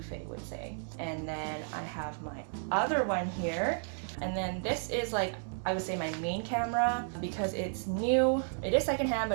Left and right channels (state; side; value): silent; left; 56 dB below the other